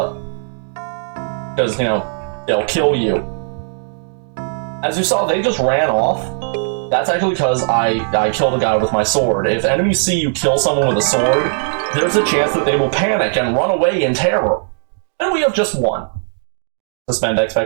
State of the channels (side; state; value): left; silent; digital silence